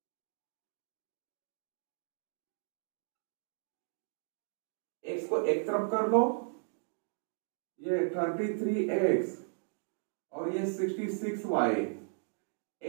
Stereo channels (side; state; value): left; silent; digital silence